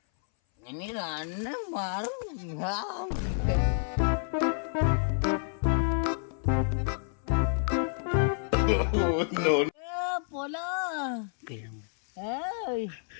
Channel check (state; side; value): silent; right; 58 dB below the other